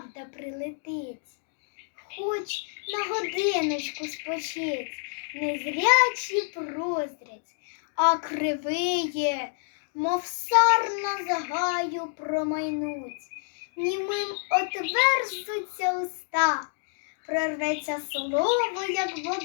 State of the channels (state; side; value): silent; right; 59 dB below the other